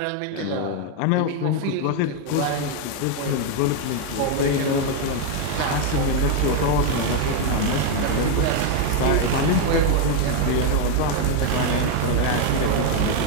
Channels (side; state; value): both; different; correlation 0.01